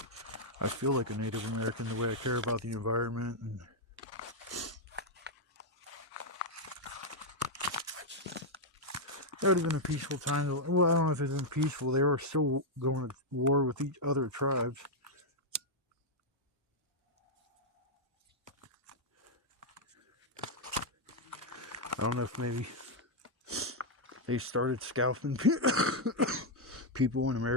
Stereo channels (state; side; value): normal; both; correlation -0.02